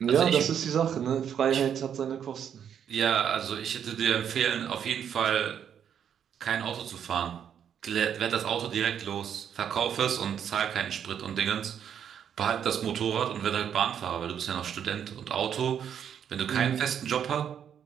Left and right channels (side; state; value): left; quieter; 8.6 dB